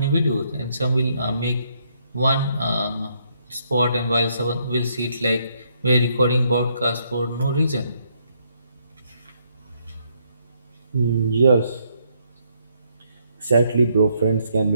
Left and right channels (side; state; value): both; inverted; correlation -0.73